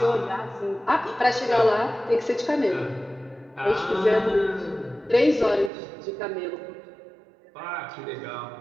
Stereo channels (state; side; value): drops out; left; at 5.7 s